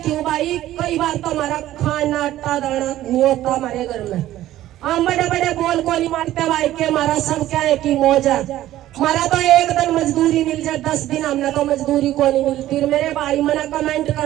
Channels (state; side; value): quieter; left; 14.0 dB